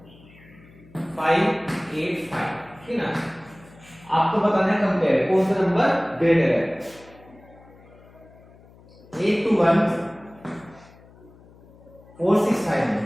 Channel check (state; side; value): noise; left; hum, 25 dB below the sound